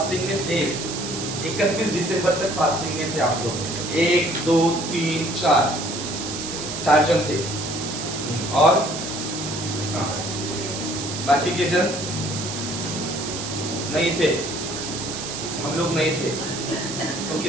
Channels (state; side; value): noise; right; hiss, 6 dB below the sound